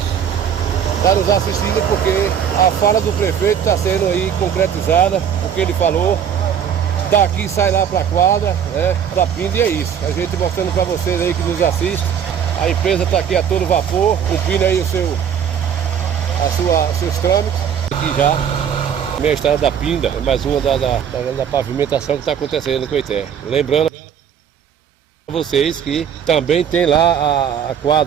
estar nos assistindo, porque a fala do prefeito está sendo aí concretizada, o que ele falou. Daqui sai lá para a quadra, da Pinda, e é isso. A gente mostrando para vocês aí que nos assistem. A empresa está aqui a todo vapor, cumprindo aí seus trâmites. Aqui já, minha estrada da Pinda, é mais uma da pavimentação que está acontecendo no Coité. Lembrando a vocês que também tem lá a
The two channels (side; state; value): left; quieter; 8.3 dB